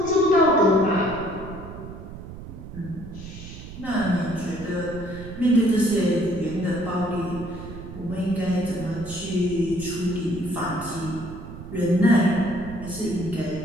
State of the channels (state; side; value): noise; right; rumble, 12 dB below the sound